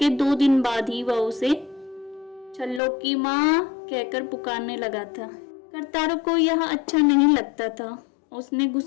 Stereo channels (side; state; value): right; drops out; at 2.8 s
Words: 2 दिन बाद ही वह उसे छल्लो की माँ कहकर पुकारने लगा था। करतारों को यह अच्छा नहीं लगता था। उसने